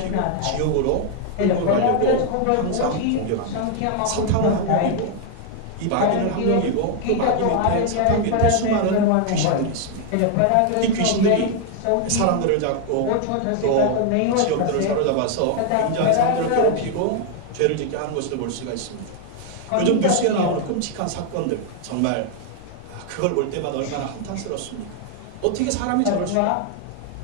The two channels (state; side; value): different; both; correlation 0.00